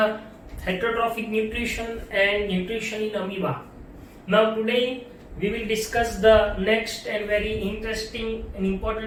heterotrophic nutrition and nutrition in amoeba. Now today we will discuss the next and very interesting and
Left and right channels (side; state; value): both; identical; correlation 1.00